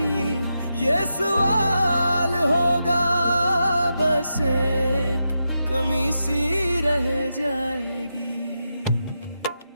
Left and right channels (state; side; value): inverted; both; correlation -0.87